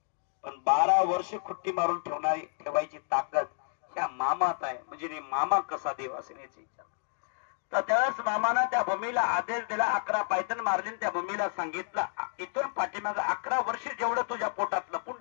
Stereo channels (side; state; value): right; silent; digital silence